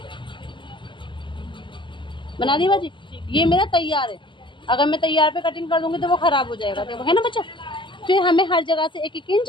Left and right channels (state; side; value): late; right; 0.24 ms